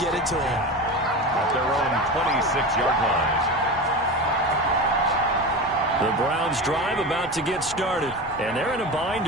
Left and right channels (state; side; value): normal; both; correlation 0.26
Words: it to them. At their own 26-yard line. The Browns drive about to get started, and they're in a bind